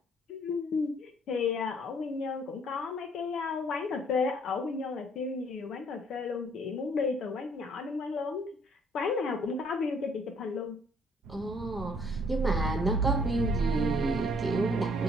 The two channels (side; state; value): both; normal; correlation 0.62